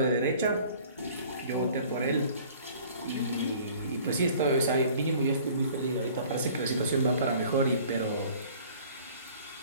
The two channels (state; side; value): inverted; both; correlation -0.51